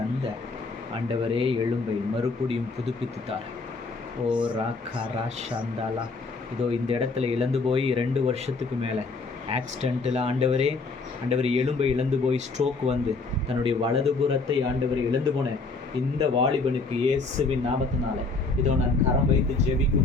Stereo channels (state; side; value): quieter; right; 3.9 dB